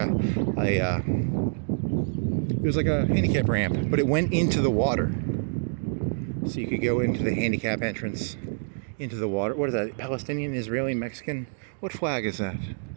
was like a handicap ramp, but it went into the water. So you could go into the handicap entrance, into the water. What is that? Palestinian, Israeli, Mexican? What flag is that?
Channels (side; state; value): left; silent; digital silence